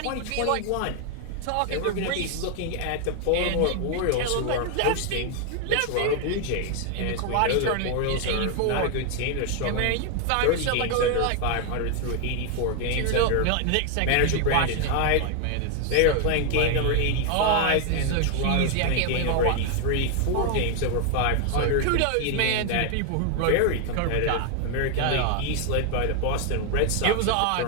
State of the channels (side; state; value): both; different; correlation 0.00